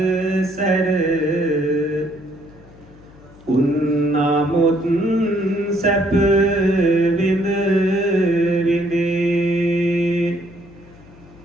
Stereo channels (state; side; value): noise; left; hum, 24 dB below the sound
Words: උන්නමුත් සැප විඳ විඳේ